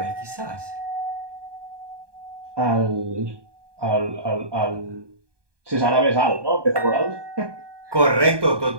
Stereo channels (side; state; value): left; late; 1.2 ms